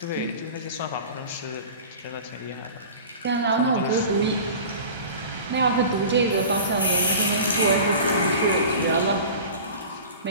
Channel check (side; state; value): both; inverted; correlation -0.38